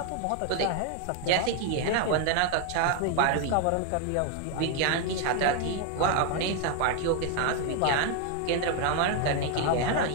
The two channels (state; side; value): different; both; correlation 0.01